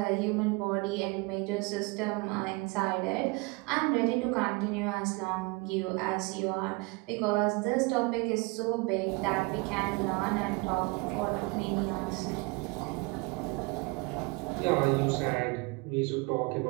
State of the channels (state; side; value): quieter; left; 26.5 dB